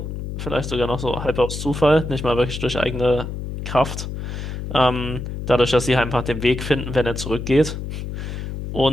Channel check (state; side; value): noise; left; hum, 6 dB below the sound